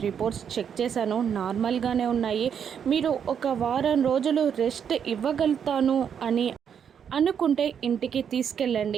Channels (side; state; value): left; quieter; 7.9 dB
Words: రిపోర్ట్స్ చెక్ చేశాను, నార్మల్గానే ఉన్నాయి, మీరు ఒక వారం రోజులు రెస్ట్ ఇవ్వగలుగుతాను అని అనుకుంటే ఇంటికి